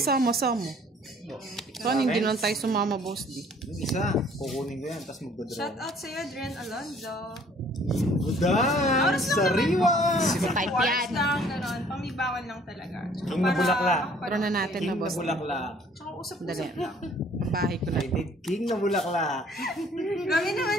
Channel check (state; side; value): normal; both; correlation 0.57